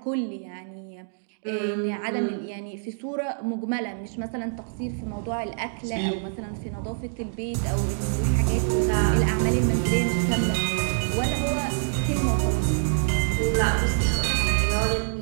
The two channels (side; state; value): left; silent; digital silence